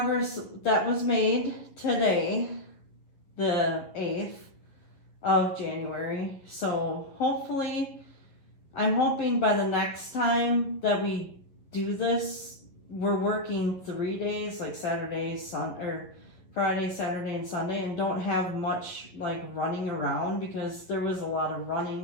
that was made today, the 8th of January. So hopefully, I'm hoping by the next time that we do this, we're working 3 days, like Saturday, or Friday, Saturday, and Sunday, and don't have much like running around, because there was a lot of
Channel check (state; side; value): late; right; 11 ms